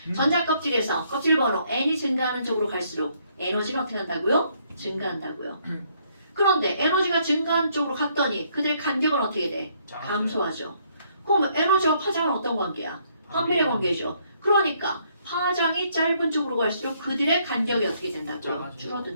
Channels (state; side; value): inverted; both; correlation -0.69